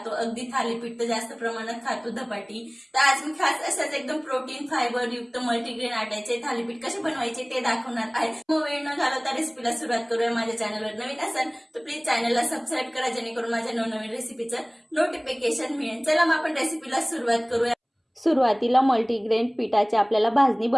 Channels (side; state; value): both; identical; correlation 1.00